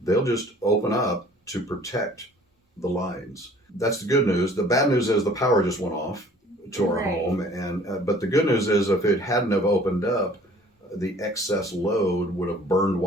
just open up to protect the lines. That's the good news. The bad news is the power just went off to our home, and but the good news is if it hadn't have opened up, the excess load would have burned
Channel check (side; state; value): both; normal; correlation 0.52